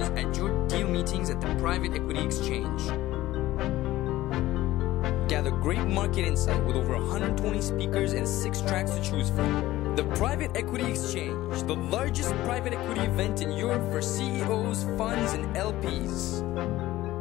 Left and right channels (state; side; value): quieter; right; 16.1 dB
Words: at your deal meetings at the Private Equity Exchange. Gather great market insight with over 120 speakers and 6 tracks to choose from. The Private Equity Exchange, the largest private equity event in Europe for CEOs, funds, and LPs.